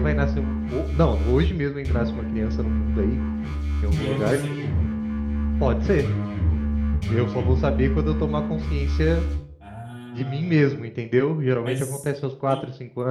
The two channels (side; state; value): both; identical; correlation 1.00